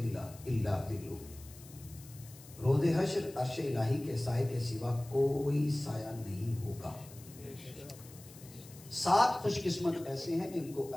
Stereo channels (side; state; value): left; noise; hiss, 20 dB below the sound